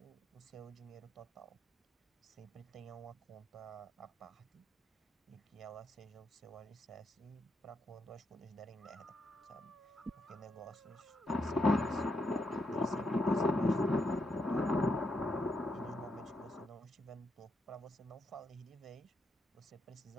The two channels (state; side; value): normal; both; correlation 0.80